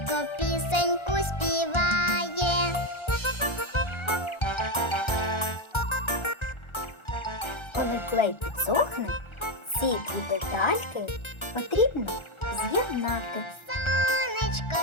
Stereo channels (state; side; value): late; right; 1.3 ms